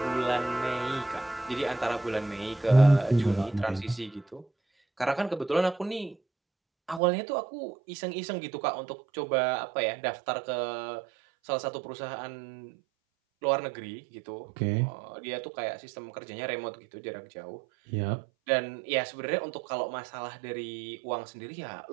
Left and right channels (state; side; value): drops out; left; at 7.0 s